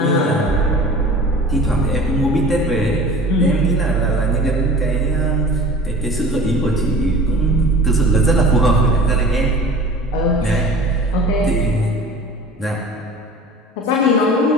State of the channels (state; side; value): normal; both; correlation 0.42